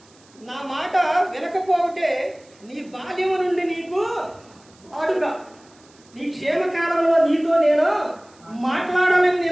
నా మాట వినకపోతే నీ బాల్యము నుండి నీకు వాడుక. నీ క్షేమకాలంలో నీతో నేను మాట్లాడాలని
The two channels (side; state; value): right; noise; hiss, 29 dB below the sound